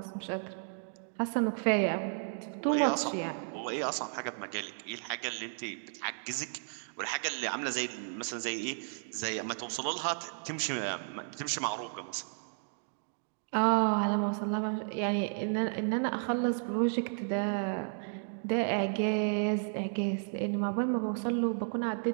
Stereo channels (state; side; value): silent; left; digital silence